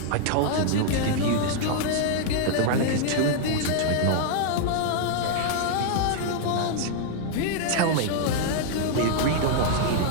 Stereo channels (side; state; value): both; different; correlation -0.01